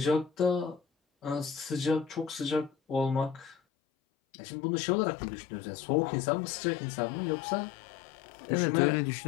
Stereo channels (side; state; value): right; drops out; at 3.6 s